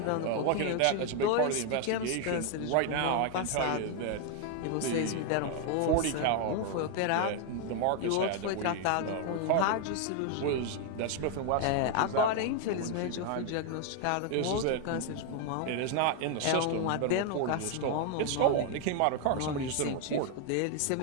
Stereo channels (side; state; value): both; different; correlation 0.01